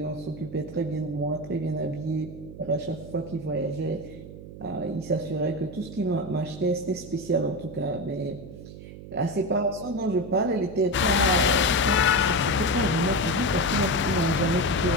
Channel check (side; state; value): right; noise; hum, 14 dB below the sound